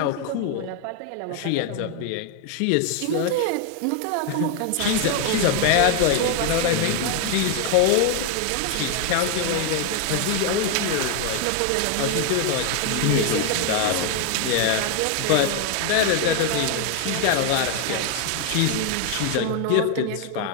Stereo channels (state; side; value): different; both; correlation 0.01